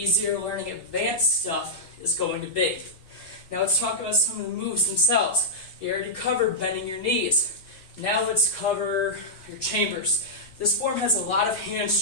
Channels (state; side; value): normal; both; correlation -0.09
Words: learning advanced stuff is going to be. Now let's talk about some of the moves themselves. You already covered bending your knees. Now let's cover your chambers. This form has a lot of hand